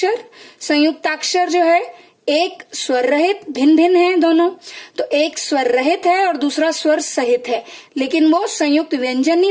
संयुक्ताक्षर जो है एक स्वर रहित, भिन्न भिन्न है दोनों, तो एक स्वर रहित है और दूसरा स्वर सहित है, लेकिन वो संयुक्त व्यंजन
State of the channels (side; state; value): both; identical; correlation 1.00